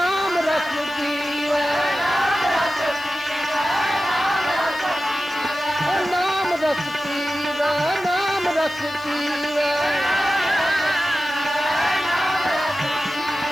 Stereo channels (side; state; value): right; noise; hiss, 25 dB below the sound